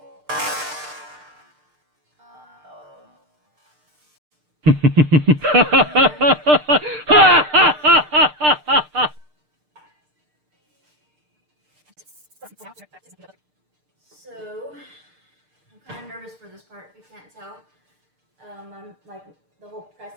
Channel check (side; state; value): left; late; 6.6 ms